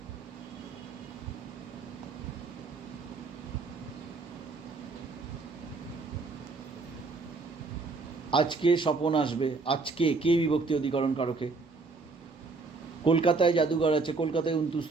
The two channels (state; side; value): quieter; left; 4.0 dB